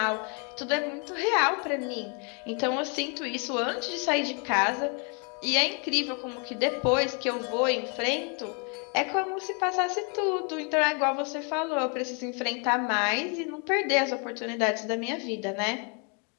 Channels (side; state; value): right; quieter; 36.3 dB